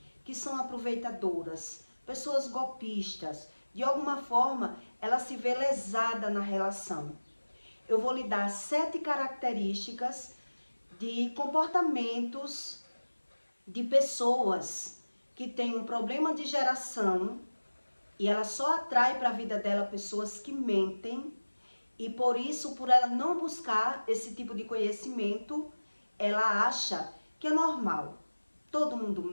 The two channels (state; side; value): inverted; both; correlation -1.00